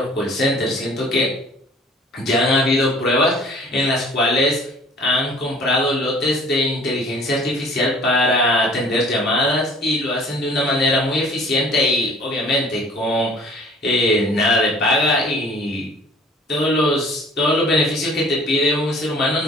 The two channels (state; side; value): normal; both; correlation 0.51